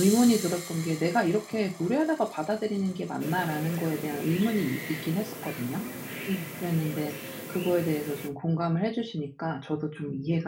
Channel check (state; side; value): identical; both; correlation 1.00